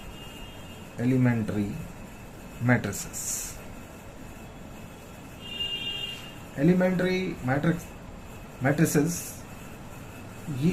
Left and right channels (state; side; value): identical; both; correlation 1.00